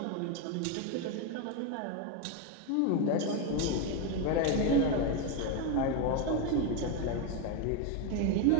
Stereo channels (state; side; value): different; both; correlation 0.03